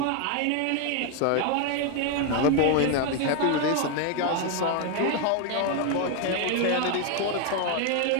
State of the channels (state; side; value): different; both; correlation 0.01